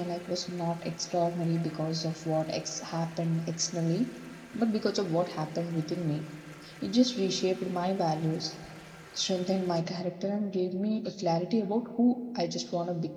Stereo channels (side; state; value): both; identical; correlation 1.00